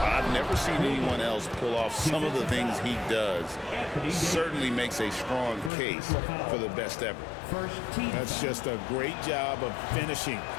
I've never seen anyone else pull off some of the things he does. Certainly makes a strong case for the best ever. That's just a great job of finishing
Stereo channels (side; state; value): right; drops out; at 5.7 s